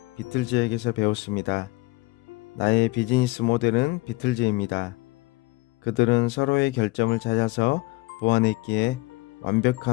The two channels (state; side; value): quieter; right; 22.1 dB